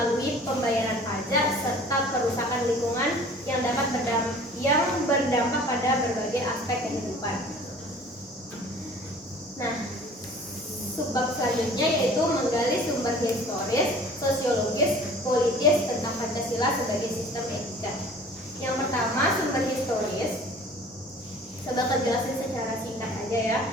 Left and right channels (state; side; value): normal; both; correlation 0.47